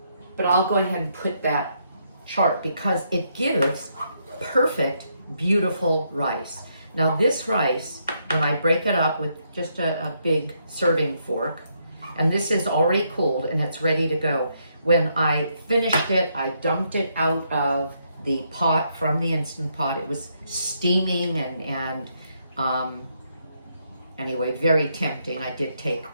But I'll go ahead and put that chart because it gives perfect, beautiful rice. Now this rice, when I break it up with just a big serving fork, and this is already cooled and it's ready to go. When I finished it, I dumped it out of the pot from the Instant Pot. It was steaming and anyway, very tempting. I did take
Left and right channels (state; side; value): inverted; both; correlation -0.76